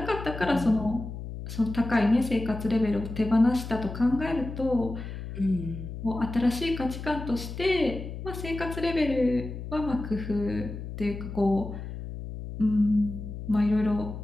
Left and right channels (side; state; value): left; noise; hum, 9 dB below the sound